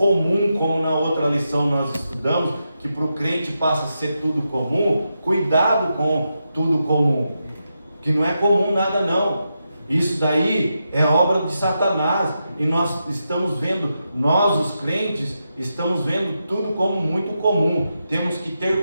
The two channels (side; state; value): both; inverted; correlation -0.86